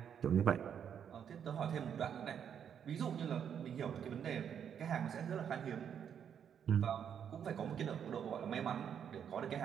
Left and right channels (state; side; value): quieter; left; 8.3 dB